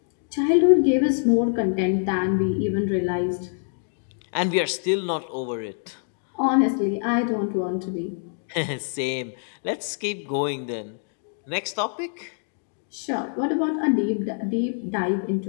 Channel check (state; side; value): silent; right; digital silence